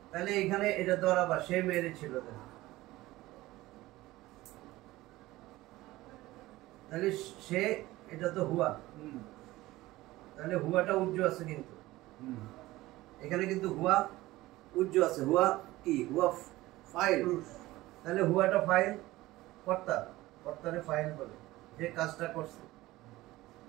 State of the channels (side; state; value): left; quieter; 18.0 dB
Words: তাহলে এখানে এটা দরাবা, সে মেরেছিল। তাহলে সে, এটা তো হুয়া, তাহলে হুয়াটা উজ্জ আছে কিন্তু এখানে, কিন্তু হুয়া উজ্জ আছে। হুয়া কি? হুয়া ফাইল। তাহলে হুয়াটা ফাইল, কর্তা, কর্তারে ফাইল বলে, যে কাজটা করছে।